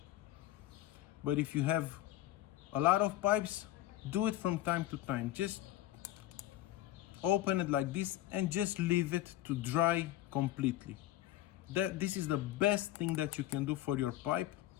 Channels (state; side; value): quieter; right; 14.3 dB